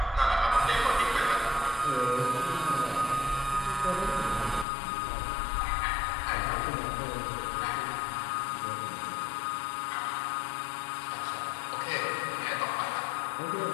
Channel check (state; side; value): drops out; right; at 4.7 s